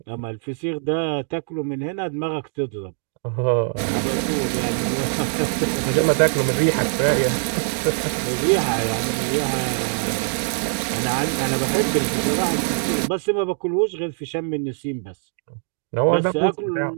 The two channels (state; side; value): silent; left; 60 dB below the other